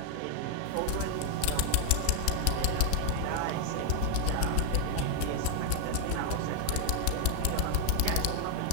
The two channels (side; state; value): both; different; correlation -0.01